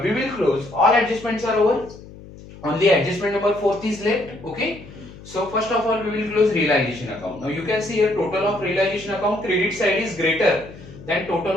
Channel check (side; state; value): left; noise; hum, 18 dB below the sound